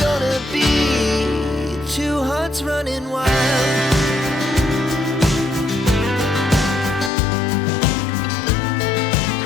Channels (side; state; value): right; drops out; at 7.1 s